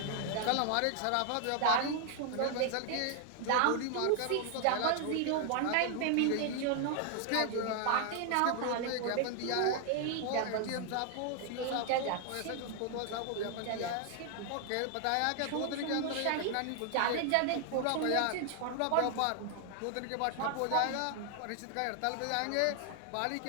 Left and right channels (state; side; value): different; both; correlation 0.00